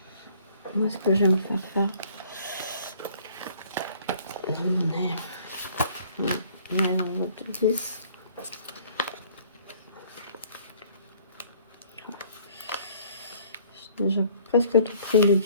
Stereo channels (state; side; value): inverted; both; correlation -0.56